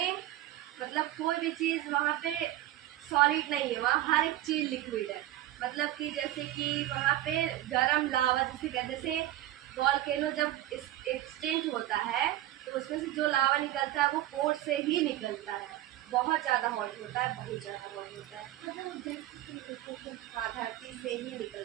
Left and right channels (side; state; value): left; quieter; 14.5 dB